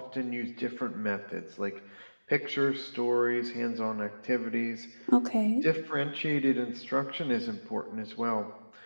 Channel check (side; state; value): both; inverted; correlation -1.00